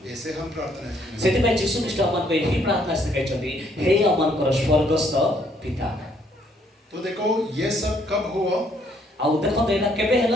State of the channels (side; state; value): both; normal; correlation 0.67